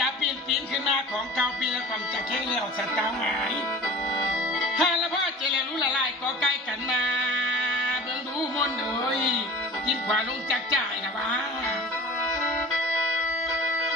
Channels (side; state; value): both; normal; correlation 0.39